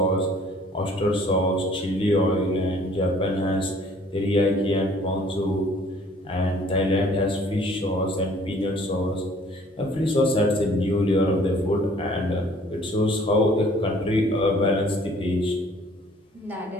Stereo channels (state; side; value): normal; both; correlation 0.56